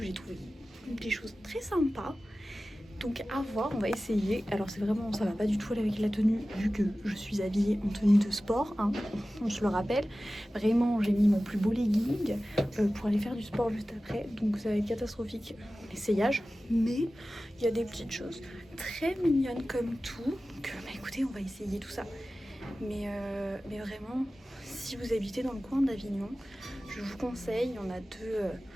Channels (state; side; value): normal; both; correlation 0.96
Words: j'ai trouvé des choses très sympas. Donc à voir, on va essayer. Alors c'est vraiment, ça va pas du tout aller avec la tenue vu que je suis habillée en tenue de sport, hein, on se le rappelle. Vraiment j'ai mis mon plus beau legging pour aller faire du sport juste après. Donc ça va être catastrophique l'essayage. Mais il y a des petites choses très mignonnes comme tout. Donc écoutez, on va essayer tout ça. Mais vraiment, si vous habitez dans le coin d'Avignon, je vous conseille, il y en a deux